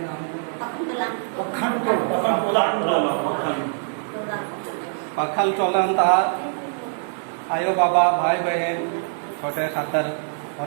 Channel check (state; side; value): silent; left; digital silence